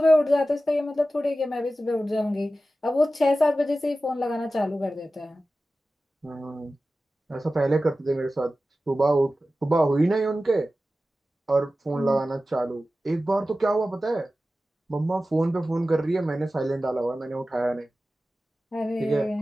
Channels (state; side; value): normal; both; correlation 0.95